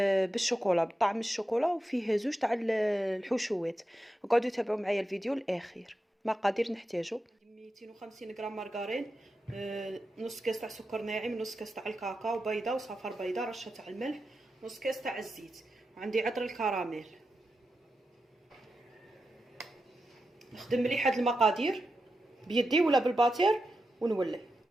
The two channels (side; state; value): both; normal; correlation 0.89